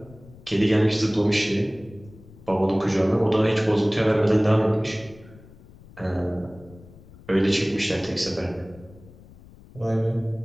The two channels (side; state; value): left; noise; rumble, 22 dB below the sound